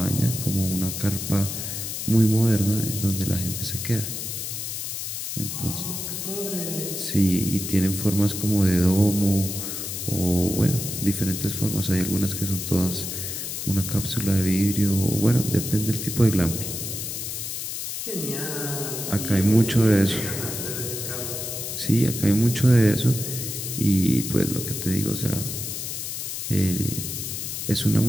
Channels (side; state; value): left; noise; hiss, 5 dB below the sound